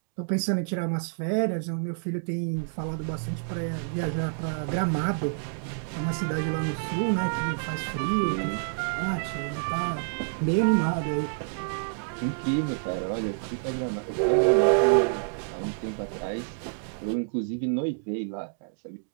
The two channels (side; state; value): left; silent; digital silence